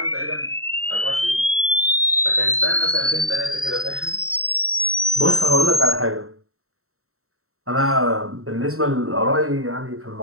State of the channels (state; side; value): late; left; 0.63 ms